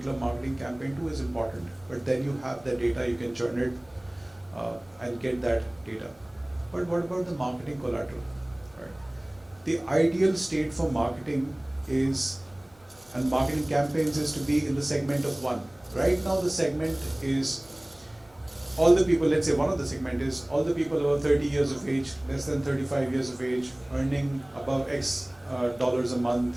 marketing campaign to is important. But then you have the data, you can churn it and get that data. But what about the marketing collateral? Right? The ideal state for marketing is, and marketing campaigns is to be in the segment of 1. Right now the segment is all the people, let's say one of the segment is all the people over 30 years of age, less than 35 years of age, earning above X dollars a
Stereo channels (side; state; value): right; noise; hum, 30 dB below the sound